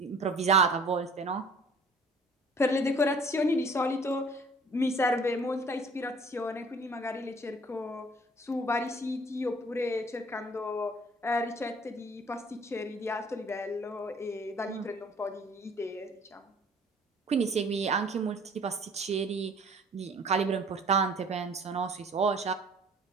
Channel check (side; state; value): both; normal; correlation 0.52